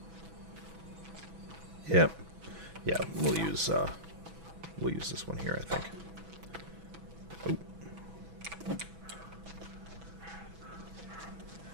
Yep. Yeah, we'll use this one here, I think. Oh.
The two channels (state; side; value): late; left; 6.1 ms